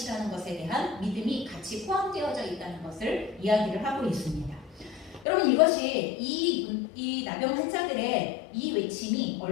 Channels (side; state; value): right; drops out; at 5.2 s